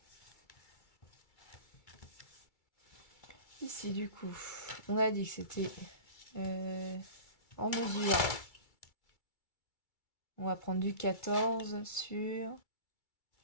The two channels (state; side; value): late; right; 2.3 ms